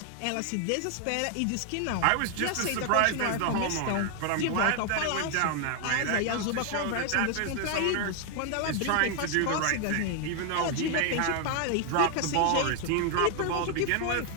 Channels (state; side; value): different; both; correlation 0.00